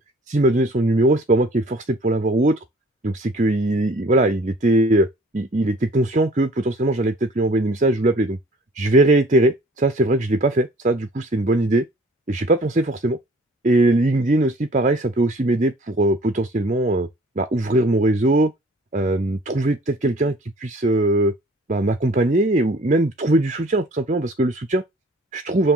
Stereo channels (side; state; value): both; normal; correlation 0.51